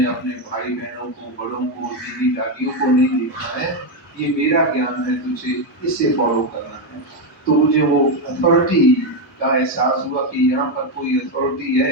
अपने भाई बहनों को, बड़ों को, दीदी दादियों को नहीं देखना है, ये मेरा ज्ञान है, तुझे इसे फॉलो करना है। तो मुझे वो अथॉरिटी का एहसास हुआ कि यहाँ पर कोई अथॉरिटी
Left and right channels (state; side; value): normal; both; correlation 0.06